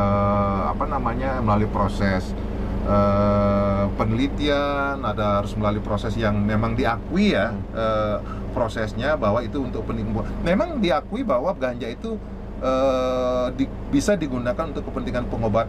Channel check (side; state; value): both; identical; correlation 1.00